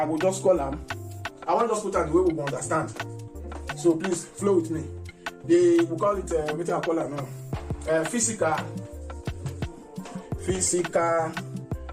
will just call them. I want to just put out the way we will understand. So please flow with me. We call it what I call it now. Physical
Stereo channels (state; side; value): identical; both; correlation 1.00